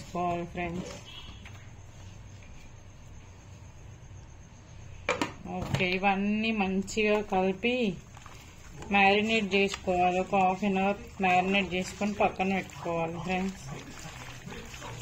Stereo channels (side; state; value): both; identical; correlation 1.00